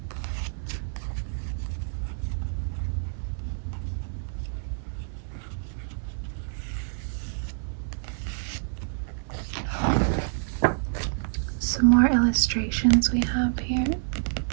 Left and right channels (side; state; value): left; silent; 60 dB below the other